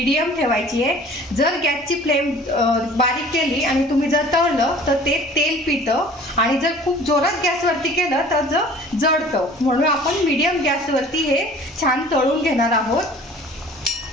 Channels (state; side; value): normal; both; correlation 0.48